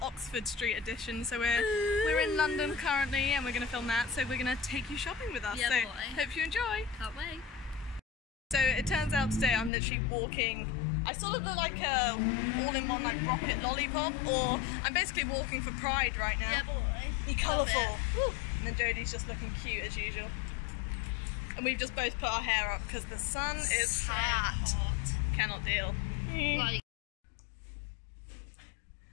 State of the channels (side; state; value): right; drops out; at 9.7 s